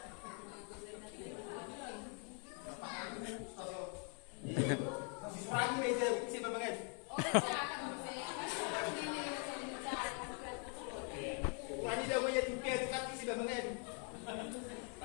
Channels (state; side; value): quieter; right; 40.0 dB